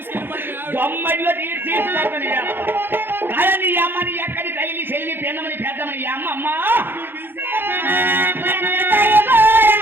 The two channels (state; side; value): late; left; 0.10 ms